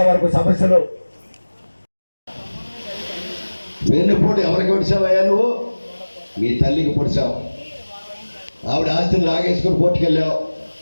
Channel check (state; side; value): inverted; both; correlation -1.00